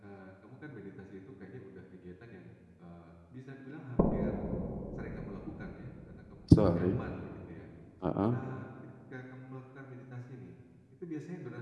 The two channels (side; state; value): both; identical; correlation 1.00